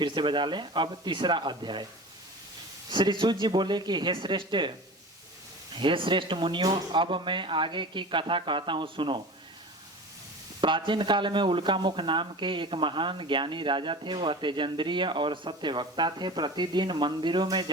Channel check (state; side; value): normal; both; correlation 0.35